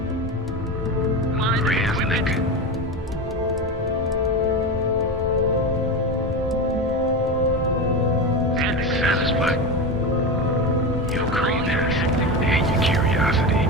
Satisfied. Your cravings and your curiosity.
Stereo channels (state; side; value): normal; both; correlation 0.21